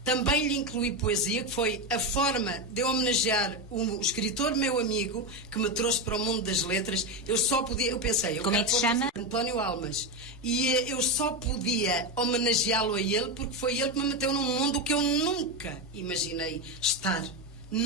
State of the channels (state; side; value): normal; both; correlation 0.13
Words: Também lhe incluí poesia, que foi a forma de eu homenagear o escritor meu amigo que me trouxe para o mundo das letras. Eu pensei... Como é que se chama? António Almas. E eu só podia homenageá-lo a ele porque foi ele que me meteu num mundo que eu nunca imaginei estar.